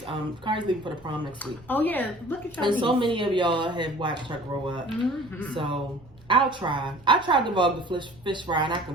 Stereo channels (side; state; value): right; noise; rumble, 25 dB below the sound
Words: Kari's leaving for the prom next week. Oh yeah, look at your And niece. so many of y'all have watched her grow up. Mm-hmm. So I'll try. I tried to vlog the fish fry, and I